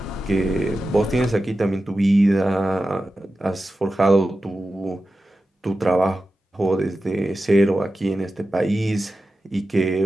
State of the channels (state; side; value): normal; both; correlation 0.92